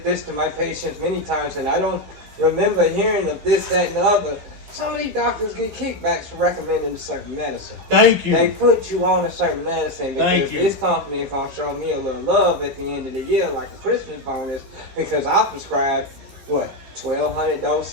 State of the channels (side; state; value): left; late; 15 ms